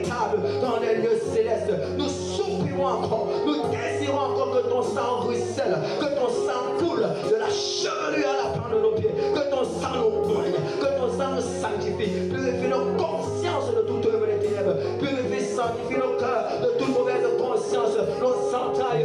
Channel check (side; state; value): both; identical; correlation 1.00